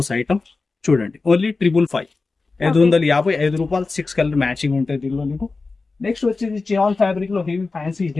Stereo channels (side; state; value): right; quieter; 3.9 dB